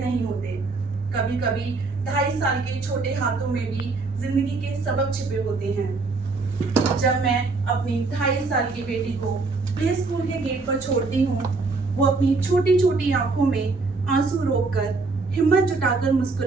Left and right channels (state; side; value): quieter; left; 3.9 dB